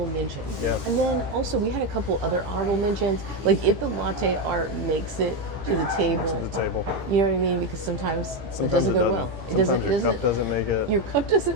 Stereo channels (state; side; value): late; left; 15 ms